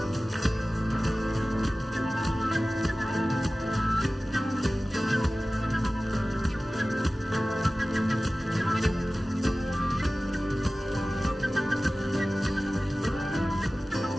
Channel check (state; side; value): normal; both; correlation 0.97